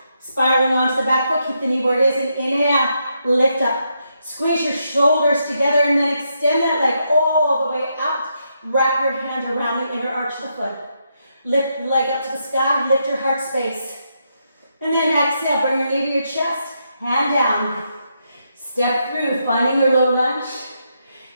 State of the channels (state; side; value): inverted; both; correlation -0.80